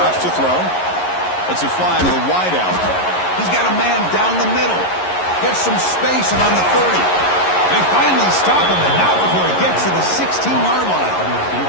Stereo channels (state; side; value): late; right; 11 ms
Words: to throw. Lets it fly to the wideout. He's got a man down the middle. Gets some space and on the 30. They finally stop him, and not before he gets to the 16-yard